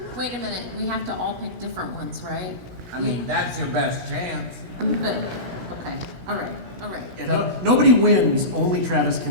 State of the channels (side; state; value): left; late; 17 ms